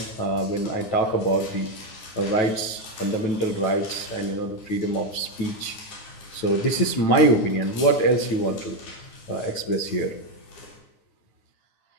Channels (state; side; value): late; right; 9.6 ms